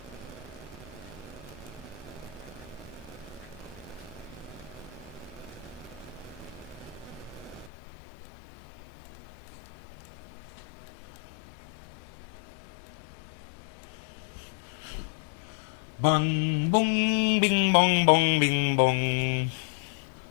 Bung, bung, bing, bong, bong, bing, bong.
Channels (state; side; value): drops out; right; at 7.7 s